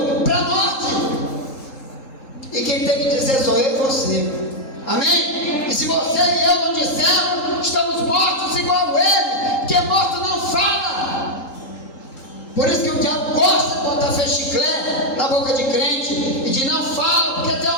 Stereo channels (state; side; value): late; right; 3.8 ms